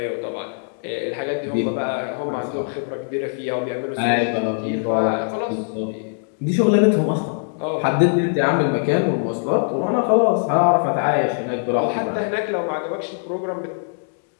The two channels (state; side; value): silent; right; digital silence